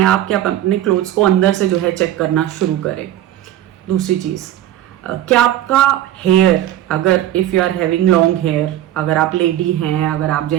आप कि आप अपने क्लोथ्स को अंदर से जो है चेक करना शुरू करें। दूसरी चीज़, क्या आपका हेयर, अगर if you are having long hair, अगर आप लेडी हैं, अगर आप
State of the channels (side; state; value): left; quieter; 12.7 dB